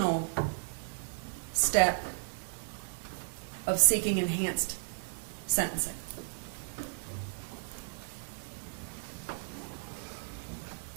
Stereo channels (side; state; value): left; silent; 55 dB below the other